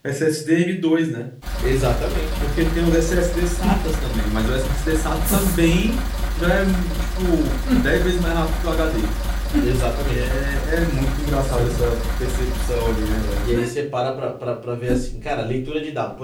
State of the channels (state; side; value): identical; both; correlation 1.00